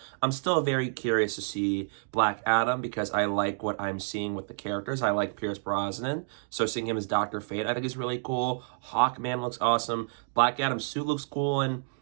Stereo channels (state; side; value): silent; left; digital silence